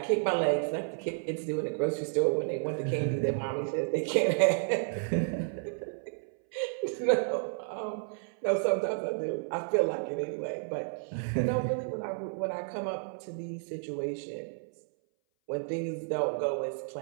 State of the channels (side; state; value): left; silent; 57 dB below the other